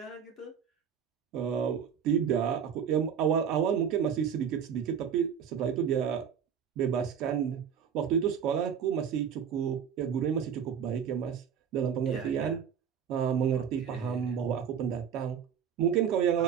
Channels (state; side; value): quieter; left; 7.9 dB